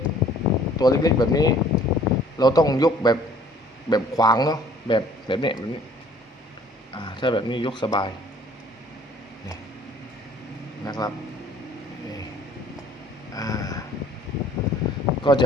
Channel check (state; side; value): normal; both; correlation 0.56